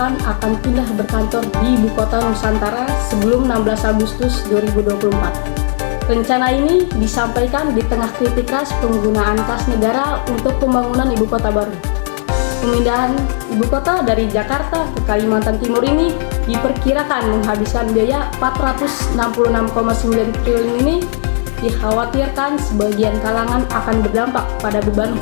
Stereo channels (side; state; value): right; silent; 70 dB below the other